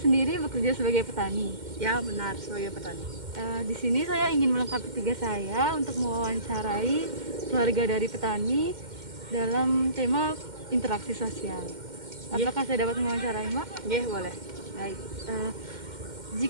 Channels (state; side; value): late; left; 2.1 ms